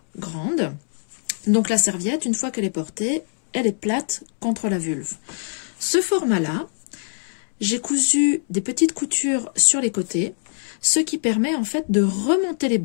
grande, donc la serviette, une fois qu'elle est portée, elle est plate contre la vulve. Ce format-là, j'ai cousu des petites coutures sur les côtés, ce qui permet en fait de remonter les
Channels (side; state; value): right; silent; digital silence